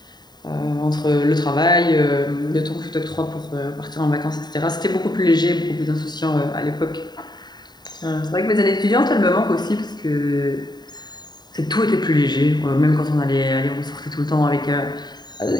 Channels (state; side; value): late; right; 0.20 ms